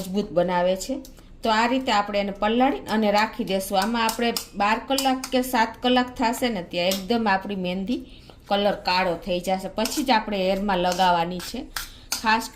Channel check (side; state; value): both; identical; correlation 1.00